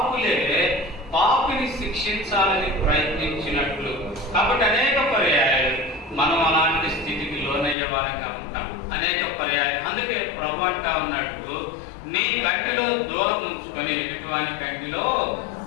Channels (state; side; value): drops out; right; at 7.8 s